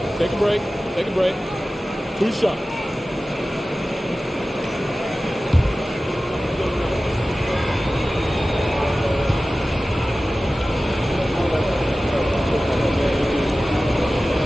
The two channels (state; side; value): normal; both; correlation 0.96